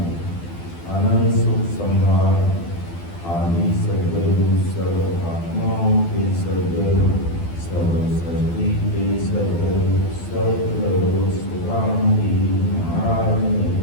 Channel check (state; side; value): late; right; 12 ms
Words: अनंत सुख सम्राट आदि सद्गुरु सर्व आत्माओं के सद्गुरु सर्व सृष्टि के सद्गुरु सद्गुरु सुखानंदी महाराज